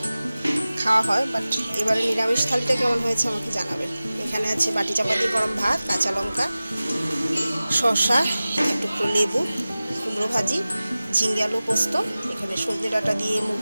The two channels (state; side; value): inverted; both; correlation -0.97